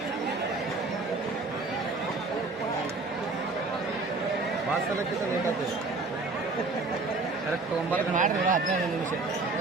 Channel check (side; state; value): left; quieter; 3.6 dB